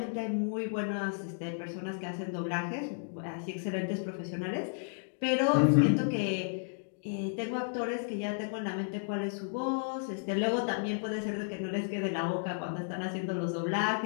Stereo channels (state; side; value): silent; right; digital silence